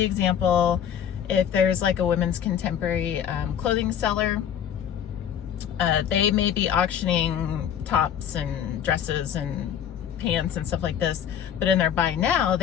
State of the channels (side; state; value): right; quieter; 9.1 dB